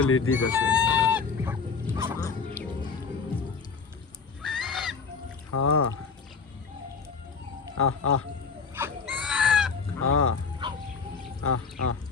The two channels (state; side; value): quieter; right; 5.2 dB